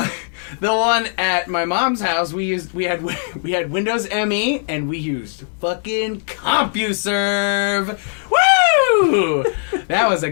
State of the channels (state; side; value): silent; right; 60 dB below the other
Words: one at my mom's house, we had Windows ME, and we used fucking CompuServe. Woo! That was a